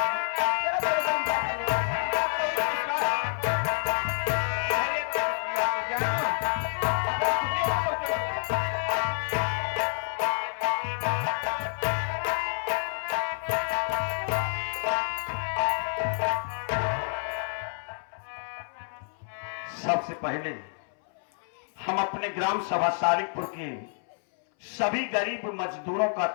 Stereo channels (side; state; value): right; silent; 59 dB below the other